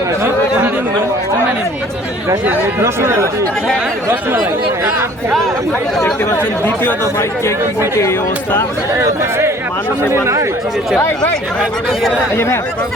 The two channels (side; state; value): both; normal; correlation 0.53